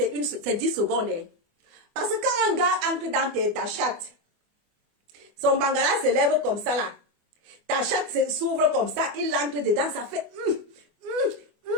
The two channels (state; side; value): late; left; 24 ms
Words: 10 secondes. Hein. Parce que quand un gars entre dans ta chatte, son bangala se lève comme ça là. Ta chatte s'ouvre comme ça, il entre dedans, ça fait...